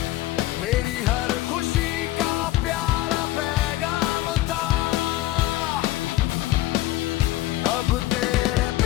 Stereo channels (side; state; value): right; quieter; 16.5 dB